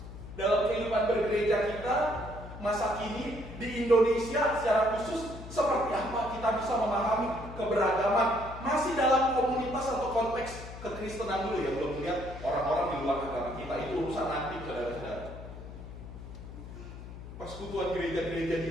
Dalam kehidupan bergereja kita masa kini di Indonesia secara khusus, seperti apa kita bisa memahami keberagaman masih dalam komunitas atau konteks kekristenan dulu ya, belum melihat orang-orang di luar agama kita, itu urusan nanti saudara-saudara. Persekutuan gereja-gereja di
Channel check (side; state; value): left; noise; hum, 12 dB below the sound